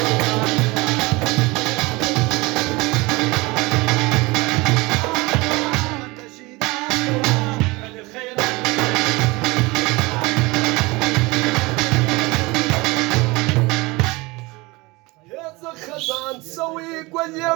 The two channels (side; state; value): left; quieter; 23.6 dB